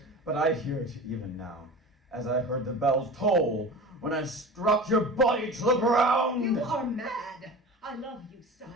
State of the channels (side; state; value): both; normal; correlation 0.34